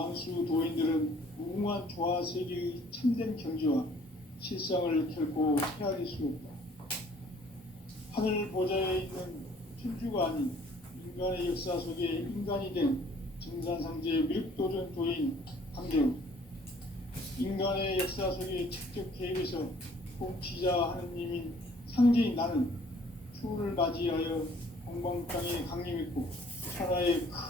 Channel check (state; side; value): normal; both; correlation 0.57